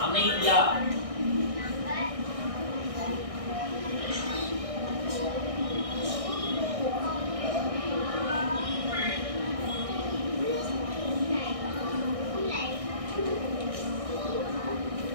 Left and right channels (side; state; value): left; late; 1.6 ms